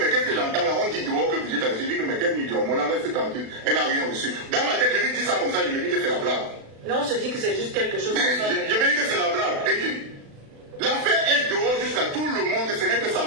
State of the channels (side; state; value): left; late; 36 ms